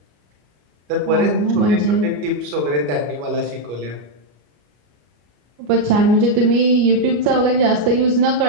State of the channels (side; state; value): left; late; 34 ms